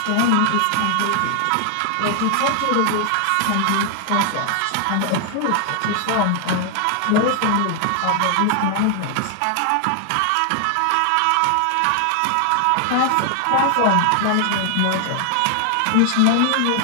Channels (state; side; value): different; both; correlation 0.00